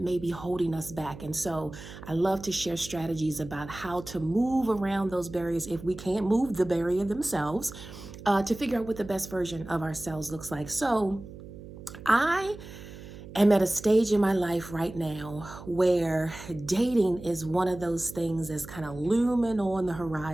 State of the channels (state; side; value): noise; right; hum, 14 dB below the sound